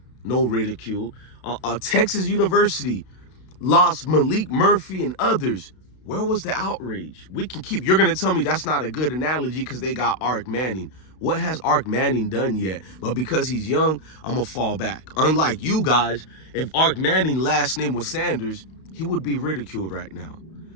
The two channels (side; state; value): right; late; 32 ms